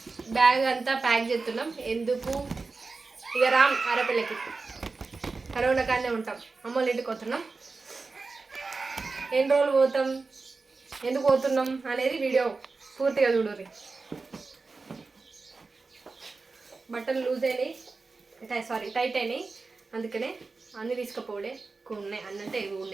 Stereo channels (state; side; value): quieter; left; 4.0 dB